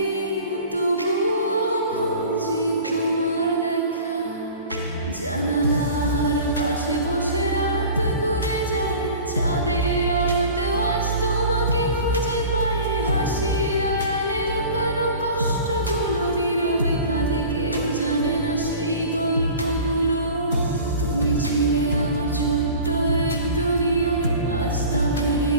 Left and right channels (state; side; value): inverted; both; correlation -0.41